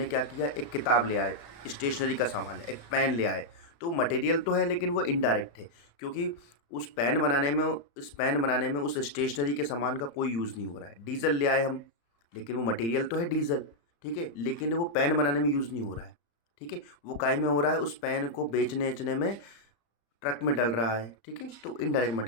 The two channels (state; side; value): late; right; 35 ms